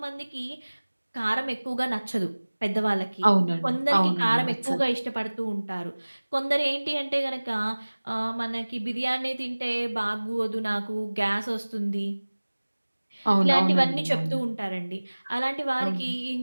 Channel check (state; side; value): inverted; both; correlation -1.00